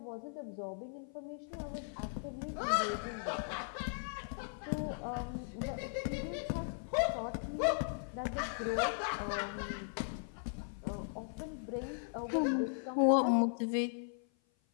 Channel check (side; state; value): right; silent; 53 dB below the other